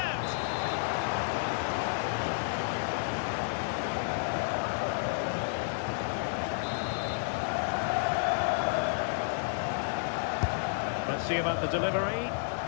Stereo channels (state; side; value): silent; right; digital silence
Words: Let's see about the delivery.